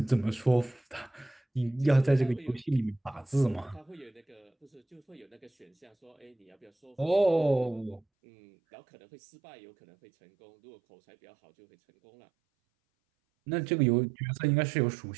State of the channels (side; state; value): left; drops out; at 8.0 s